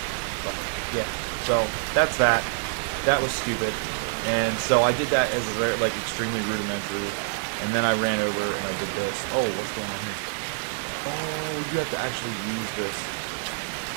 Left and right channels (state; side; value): silent; left; 61 dB below the other